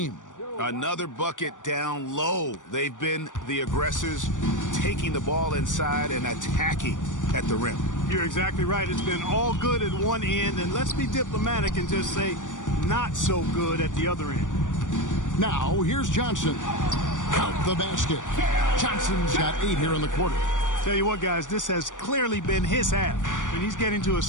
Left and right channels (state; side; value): late; right; 0.87 ms